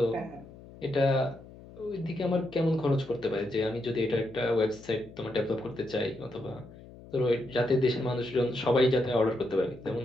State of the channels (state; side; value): noise; left; hum, 19 dB below the sound